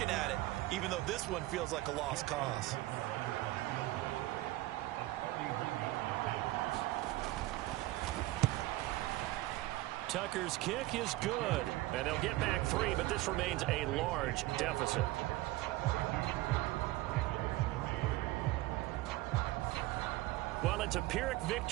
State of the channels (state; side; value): quieter; left; 18.2 dB